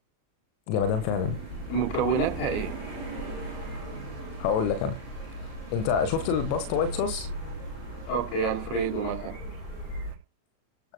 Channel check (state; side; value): late; right; 37 ms